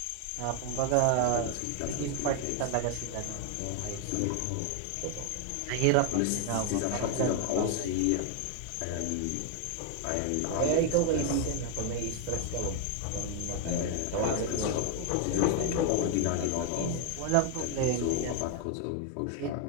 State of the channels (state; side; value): different; both; correlation 0.00